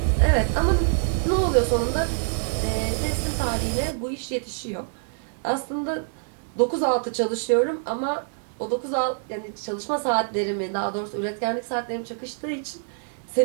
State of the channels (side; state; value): left; silent; digital silence